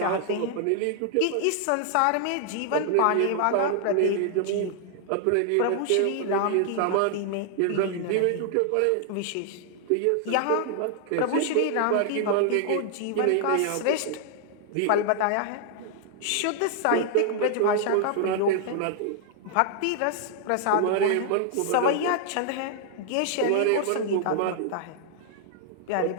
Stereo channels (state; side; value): different; both; correlation -0.01